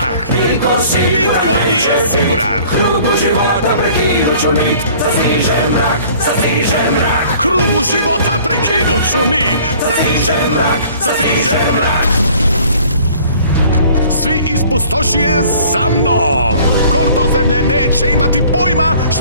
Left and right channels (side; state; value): both; inverted; correlation -0.52